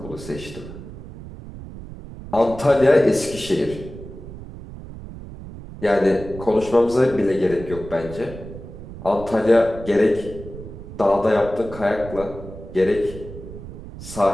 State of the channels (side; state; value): right; noise; rumble, 13 dB below the sound